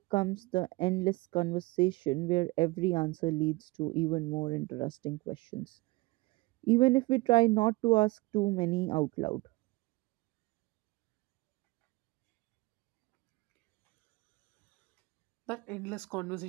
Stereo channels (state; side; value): quieter; left; 22.6 dB